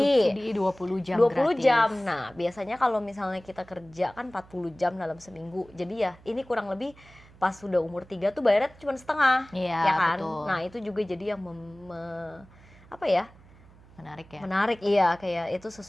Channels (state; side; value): noise; right; hum, 24 dB below the sound